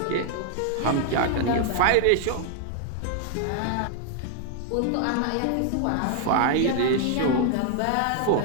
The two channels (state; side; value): different; both; correlation 0.00